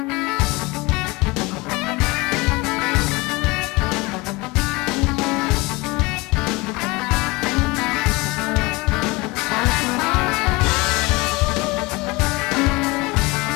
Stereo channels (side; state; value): right; quieter; 23.8 dB